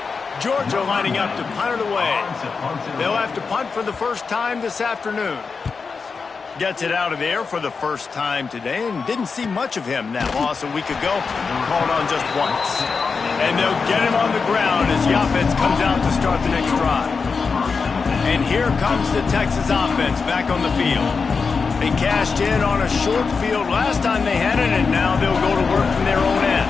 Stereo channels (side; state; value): right; quieter; 5.0 dB